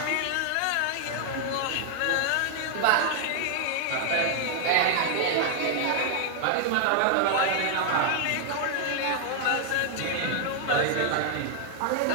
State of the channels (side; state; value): both; different; correlation 0.00